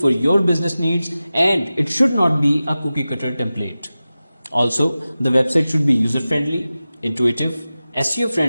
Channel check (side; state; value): both; inverted; correlation -0.95